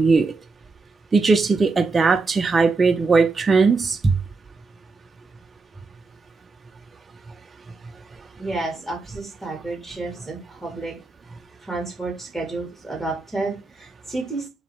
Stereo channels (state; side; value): quieter; left; 4.0 dB